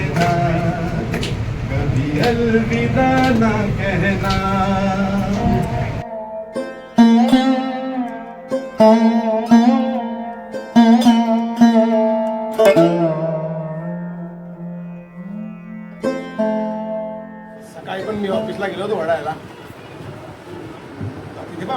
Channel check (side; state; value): both; identical; correlation 1.00